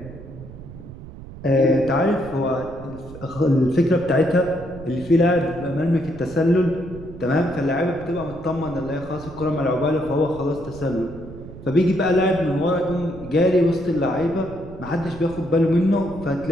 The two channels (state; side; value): noise; right; rumble, 15 dB below the sound